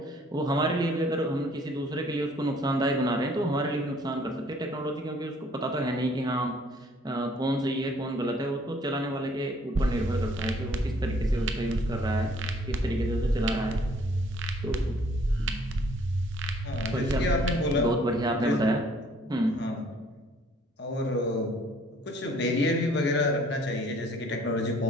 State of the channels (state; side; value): normal; both; correlation 0.59